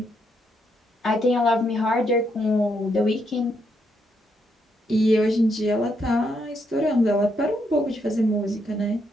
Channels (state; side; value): normal; both; correlation 0.77